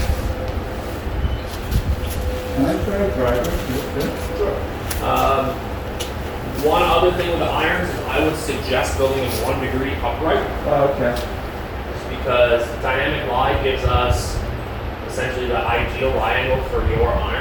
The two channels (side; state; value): both; identical; correlation 1.00